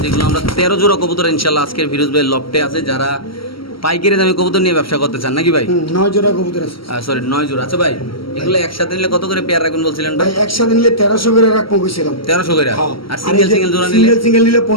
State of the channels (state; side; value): late; right; 0.75 ms